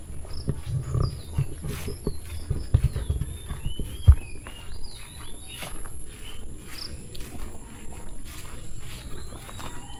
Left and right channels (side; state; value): both; identical; correlation 1.00